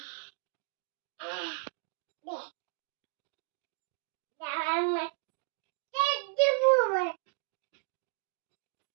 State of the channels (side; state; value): left; silent; 55 dB below the other